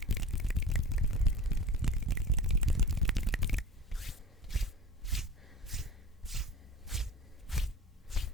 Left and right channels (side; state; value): both; normal; correlation 0.34